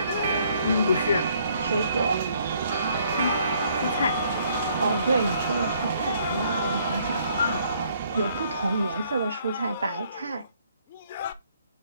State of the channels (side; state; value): both; inverted; correlation -0.66